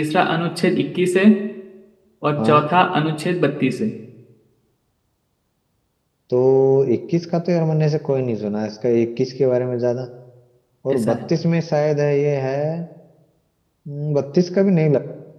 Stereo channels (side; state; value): both; identical; correlation 1.00